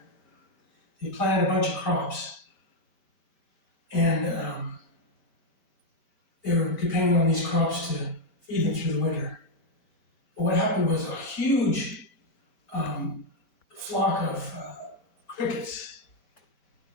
they planted a bunch of crops, and they were depending on these crops to feed them through the winter. But what happened was a huge flock of crickets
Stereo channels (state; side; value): late; right; 5.1 ms